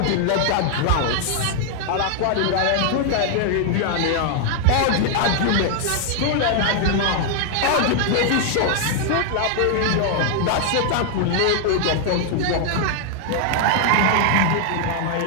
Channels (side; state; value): both; different; correlation 0.00